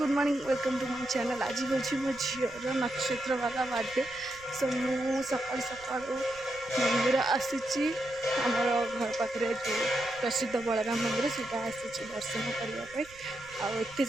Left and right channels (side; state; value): right; noise; rumble, 23 dB below the sound